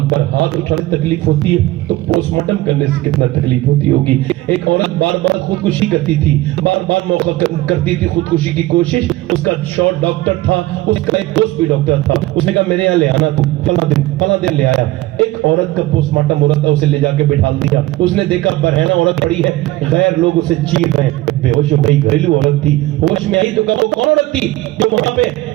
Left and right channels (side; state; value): left; quieter; 17.7 dB